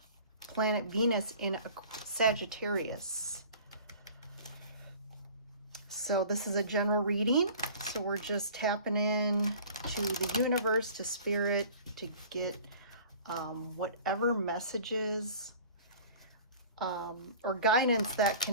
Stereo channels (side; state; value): both; inverted; correlation -0.45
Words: planet Venus in a Sagittarius. So this is a general reading. So we're just tapping in to the universe, to spirit, to get whatever messages or guidance that